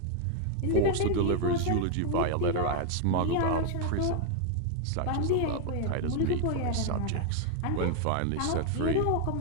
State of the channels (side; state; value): both; different; correlation 0.00